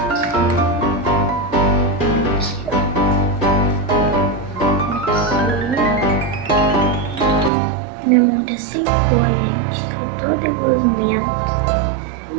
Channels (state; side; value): drops out; left; at 7.5 s